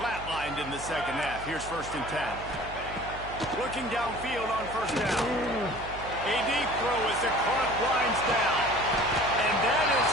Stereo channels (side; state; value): right; noise; hum, 13 dB below the sound